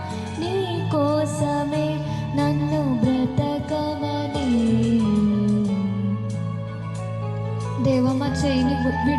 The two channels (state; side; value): identical; both; correlation 1.00